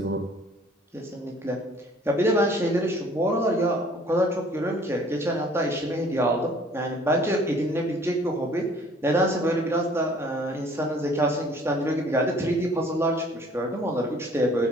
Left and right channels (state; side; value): normal; both; correlation 0.54